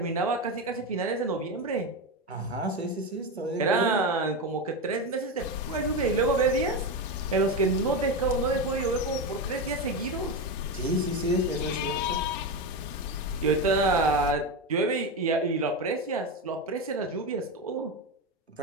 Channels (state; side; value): normal; both; correlation 0.15